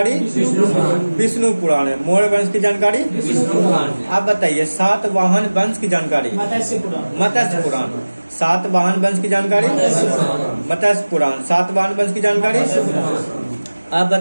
विष्णु पुराण है। मौर्य वंश की जानकारी आप बताइए सातवाहन वंश की जानकारी मत्स्य पुराण। सातवाहन वंश की जानकारी मत्स्य पुराण। सातवाहन वंश की जानकारी आप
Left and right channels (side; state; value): both; inverted; correlation -1.00